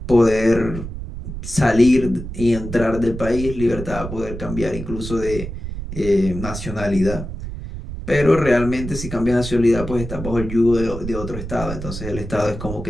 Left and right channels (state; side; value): noise; right; rumble, 8 dB below the sound